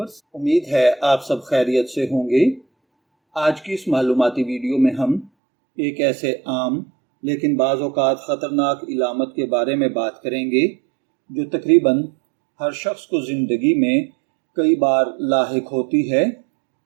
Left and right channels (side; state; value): left; drops out; at 5.3 s